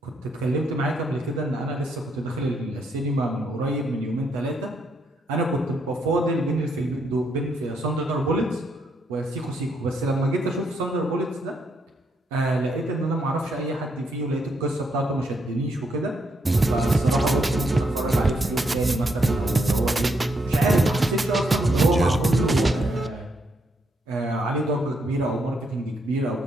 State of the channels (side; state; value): both; normal; correlation 0.76